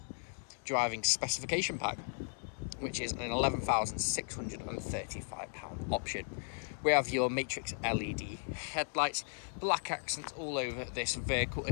driving specification pack, which is an £11,635 option. We have your matrix LED headlights, black accents all over this vehicle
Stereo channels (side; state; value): right; silent; 54 dB below the other